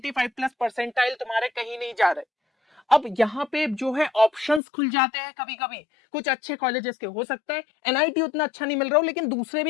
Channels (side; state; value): right; drops out; at 4.6 s